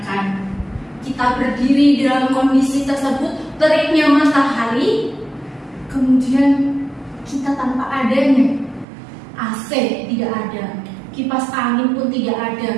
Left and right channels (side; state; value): left; drops out; at 8.8 s